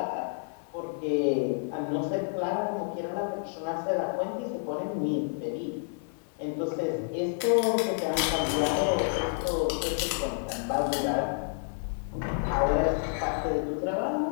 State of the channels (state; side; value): silent; right; digital silence